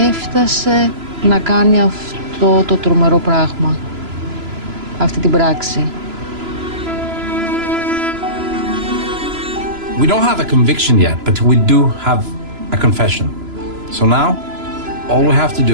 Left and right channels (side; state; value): left; late; 3.0 ms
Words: έφτασε να κάνει αυτό το τρομερό πράγμα, αυτή την πράξη. We don't have a conviction yet, but we do have a confession. So now, all we have to